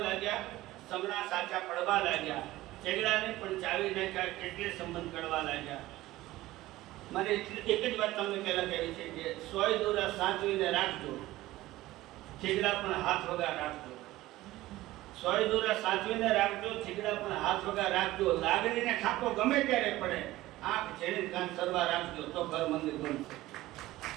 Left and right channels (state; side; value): quieter; left; 17.0 dB